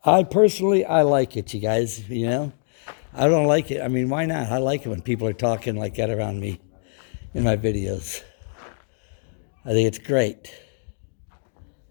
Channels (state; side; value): silent; right; digital silence